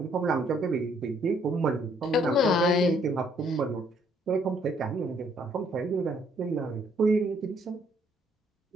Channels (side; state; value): both; normal; correlation 0.66